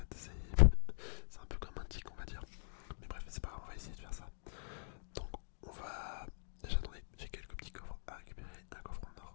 c'est un peu comme un tic, on va dire. Mais bref, c'est pas grave, on va essayer de faire ça. Donc on va... Déjà attendez, j'ai quelques petits coffres à récupérer. Un coffre en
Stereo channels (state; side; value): silent; right; digital silence